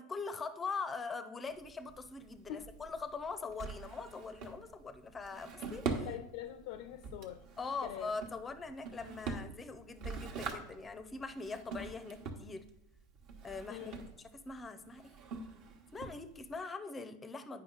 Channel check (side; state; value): both; normal; correlation 0.58